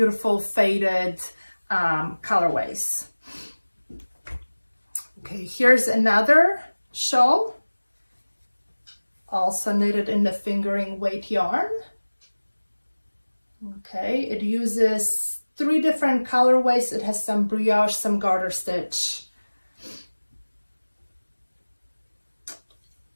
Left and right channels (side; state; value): both; inverted; correlation -1.00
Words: faded colorways. Okay, here's another shawl, also knitted in the fingering weight yarn. Okay, it uses 3 different colorways. It has some brioche, some garter stitch.